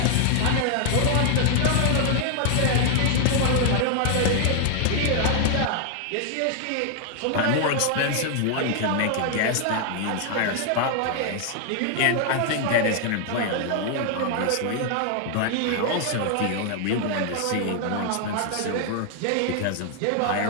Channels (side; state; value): both; different; correlation 0.00